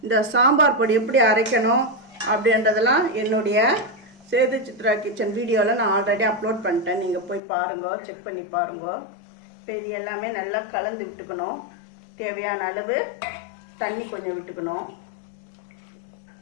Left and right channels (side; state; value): right; drops out; at 7.4 s